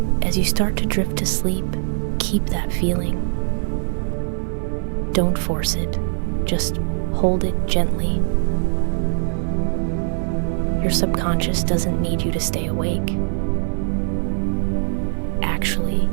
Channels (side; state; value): left; silent; 55 dB below the other